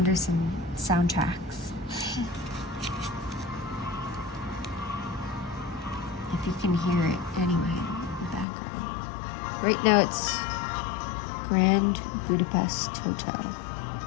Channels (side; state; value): right; drops out; at 8.5 s